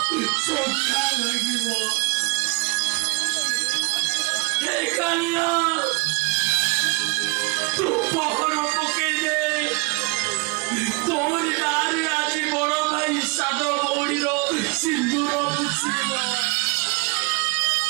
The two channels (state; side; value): quieter; left; 28.4 dB